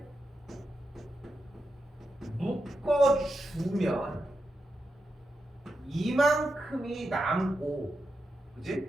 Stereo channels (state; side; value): normal; both; correlation 0.87